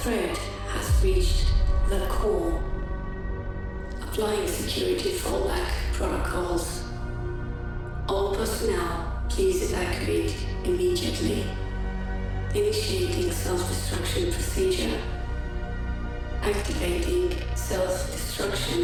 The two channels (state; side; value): identical; both; correlation 1.00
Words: threat has reached the core. Applying security fallback protocols. All personnel, please evacuate immediately. Initiating self-destruction procedure. Activating